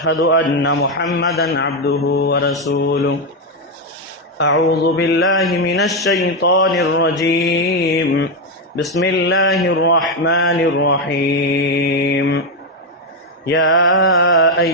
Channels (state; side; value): normal; both; correlation 0.06